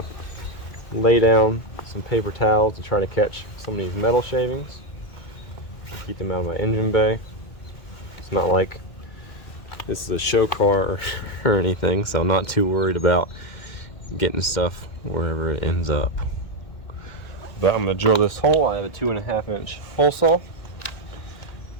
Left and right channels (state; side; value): late; right; 2.1 ms